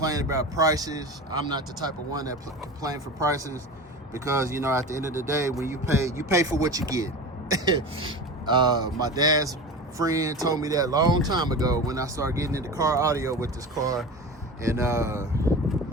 about prices. I'm not the type of one that complain for prices, because you know, at the end of the day, when you pay for what you get. My dad's friend told me that a long time ago when I started getting into car audio with this car, and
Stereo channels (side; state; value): both; normal; correlation 0.30